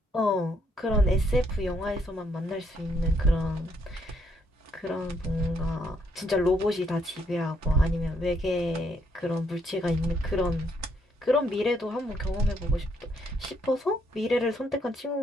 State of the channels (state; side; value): normal; both; correlation 0.72